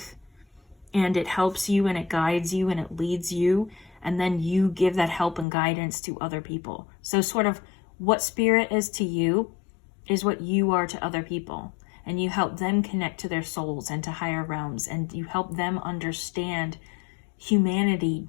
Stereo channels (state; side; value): drops out; right; at 5.5 s